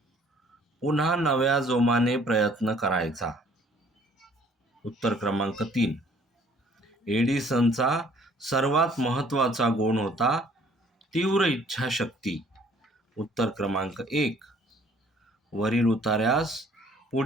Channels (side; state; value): both; normal; correlation 0.58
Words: पुन्हा नव्या जोमाने प्रयत्न करायचा. उत्तर क्रमांक 3. एडिसनचा सर्वात महत्त्वाचा गुण होता तीव्र इच्छाशक्ती. उत्तर क्रमांक 1. वरील उतार्यास